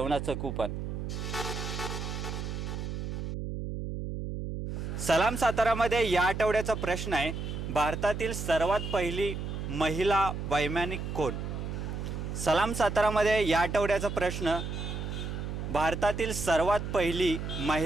कूपन। सलाम सातारामध्ये या आठवड्याचा प्रश्न आहे, भारतातील सर्वात पहिली महिला वैमानिक कोण? सलाम सातारामध्ये या आठवड्याचा प्रश्न, भारतातील सर्वात पहिली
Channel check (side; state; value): right; noise; hum, 5 dB below the sound